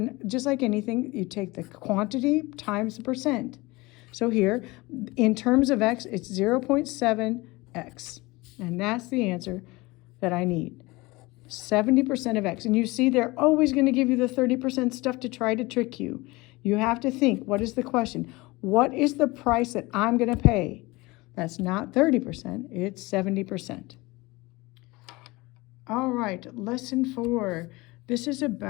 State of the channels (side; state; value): right; quieter; 22.4 dB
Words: just like anything, you take the quantity times the percent. So here, in terms of X, it's 0.7X. And that's the answer that I need. 70% of X. And you see, they're always going to give you the 30% stuff to try to trick you. You have to think, what is the question? What is the price that I'm going to pay? That's not 30%, it's 70%. All right, lesson 4. This is